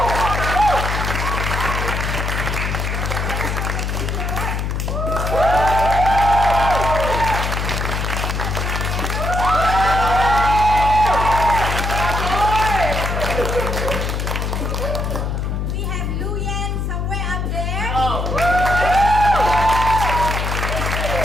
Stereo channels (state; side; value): noise; left; hum, 1 dB below the sound